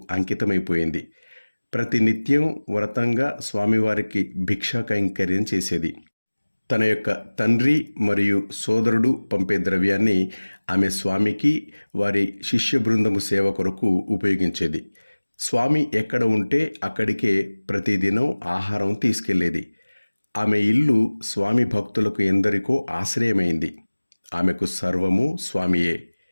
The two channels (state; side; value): inverted; both; correlation -1.00